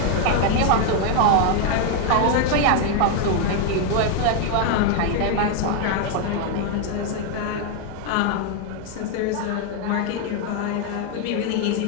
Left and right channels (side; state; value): both; different; correlation 0.01